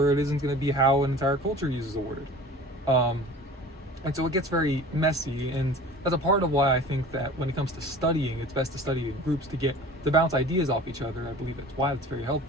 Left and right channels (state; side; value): normal; both; correlation 0.41